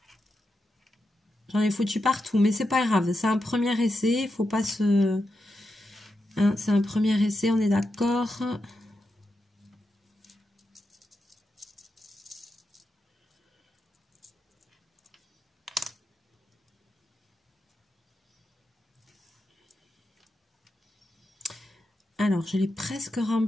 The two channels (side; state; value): both; normal; correlation 0.87